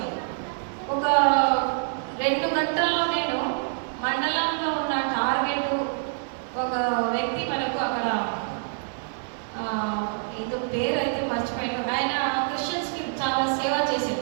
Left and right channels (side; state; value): left; silent; digital silence